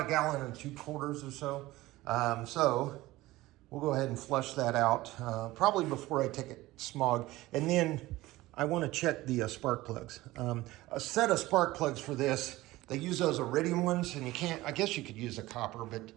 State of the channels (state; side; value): quieter; left; 18.2 dB